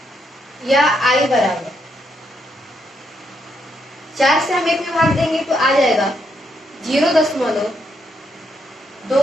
या I बराबर 4 से हम 1 में भाग देंगे तो आ जाएगा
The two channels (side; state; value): both; normal; correlation 0.77